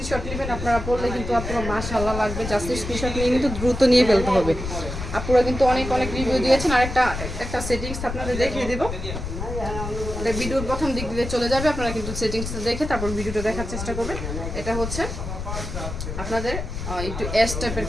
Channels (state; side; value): noise; left; rumble, 6 dB below the sound